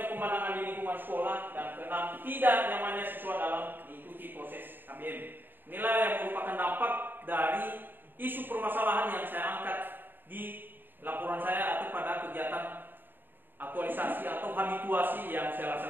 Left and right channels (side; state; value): left; late; 0.093 ms